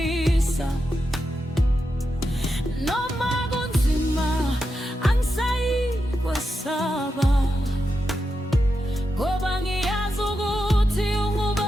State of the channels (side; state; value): both; normal; correlation 0.87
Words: Noma kunzima angisayikwesaba, ngoba ngiyazi ukuthi